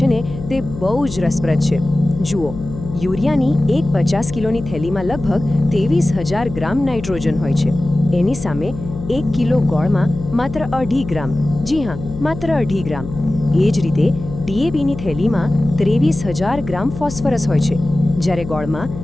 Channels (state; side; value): noise; left; hum, 10 dB below the sound